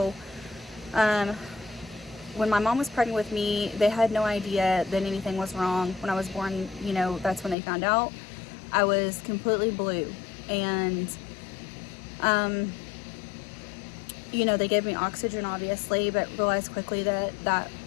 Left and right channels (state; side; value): drops out; right; at 7.6 s